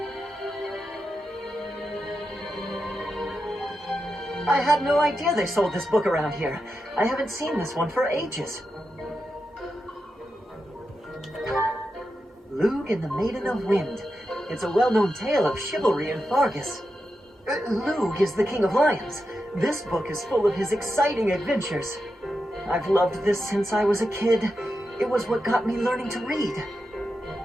I had no idea they sold this book around here. I haven't seen this one for ages. Lug and the Maiden of Wind. It's a well-known tale of chivalry in Fargus. Lug is the King of Lions. This book is full of his exciting adventures. I've loved this since I was a kid. It was what got me learning to read.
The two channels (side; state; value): both; normal; correlation 0.88